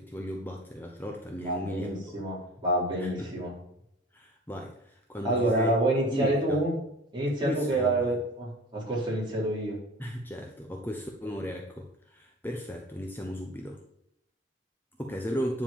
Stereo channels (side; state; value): both; normal; correlation 0.42